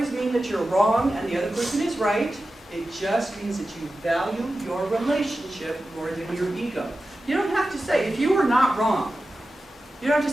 mean that you're wrong and the other person is right. It just means that you value your relationship more than your ego. You don't have to say, if you were not wrong, you don't have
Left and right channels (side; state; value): both; normal; correlation 0.93